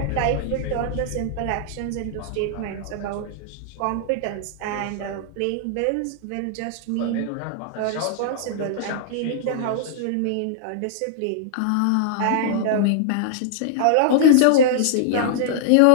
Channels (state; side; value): different; both; correlation -0.01